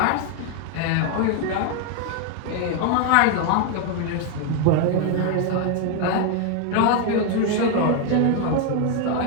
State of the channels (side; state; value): both; different; correlation 0.01